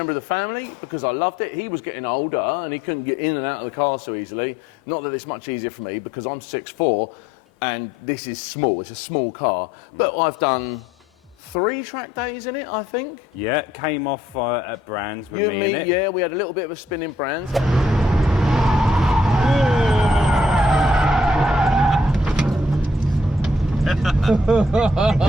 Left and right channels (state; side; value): normal; both; correlation 0.68